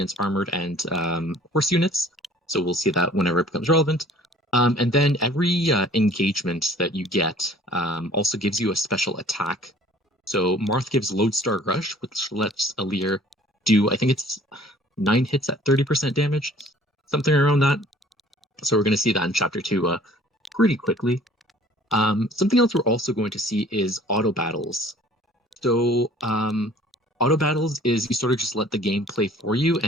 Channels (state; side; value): normal; both; correlation 0.52